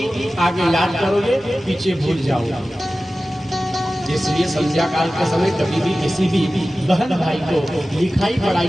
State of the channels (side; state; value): both; normal; correlation 0.95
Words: आगे याद करोगे पीछे भूल जाओगे। इसलिए संध्या काल के समय कभी भी किसी भी बहन भाई को लिखाई पढ़ाई